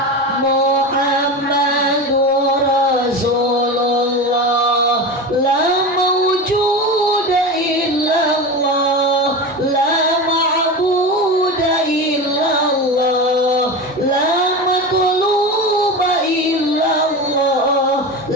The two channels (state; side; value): normal; both; correlation 0.25